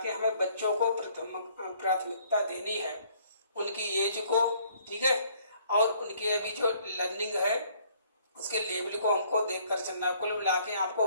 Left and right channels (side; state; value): both; inverted; correlation -0.62